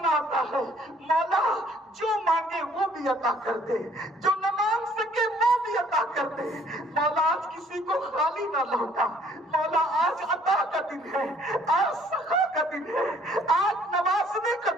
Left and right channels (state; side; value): normal; both; correlation 0.60